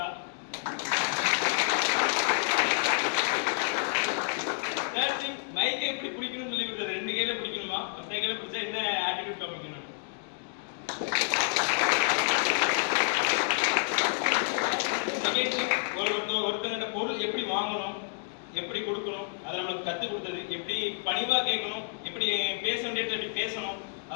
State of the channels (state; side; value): silent; right; digital silence